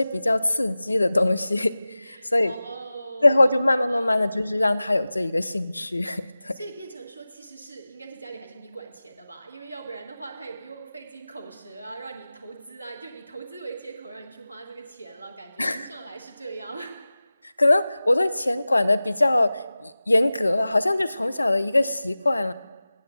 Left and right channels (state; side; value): inverted; both; correlation -0.97